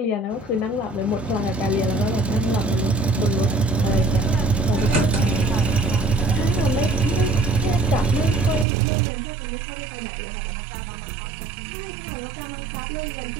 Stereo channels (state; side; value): drops out; left; at 8.7 s